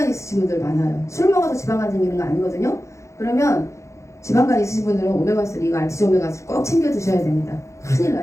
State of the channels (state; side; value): late; right; 0.14 ms